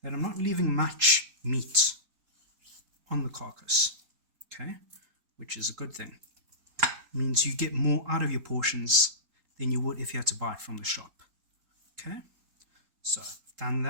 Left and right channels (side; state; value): left; late; 3.8 ms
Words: that I'm not leaving much meat on the carcass. Okay, which is a good thing. It means you get more out of your portions than you would if you had to buy it from the shop. Okay, so I've done